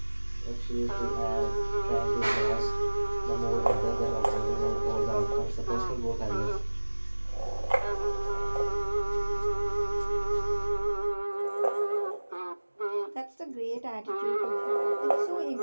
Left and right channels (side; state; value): both; inverted; correlation -1.00